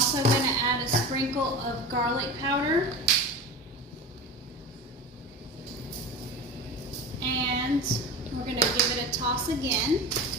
going to add a sprinkle of garlic powder. And we're going to give it a toss again.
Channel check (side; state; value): both; normal; correlation 0.29